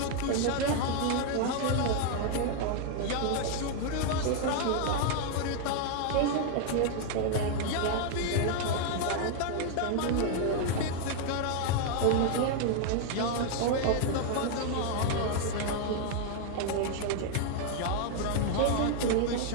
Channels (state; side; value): different; both; correlation 0.00